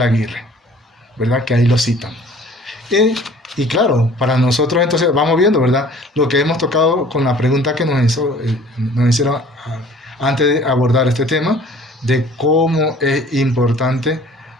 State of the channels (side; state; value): both; normal; correlation 0.50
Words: Aguirre, ¿verdad? Que ahí lo citan. Y claro, para nosotros entonces vamos viendo, ¿verdad? Lo que hemos tocado con la pregunta que nos hicieron antes de abordar este tema, de cómo es importante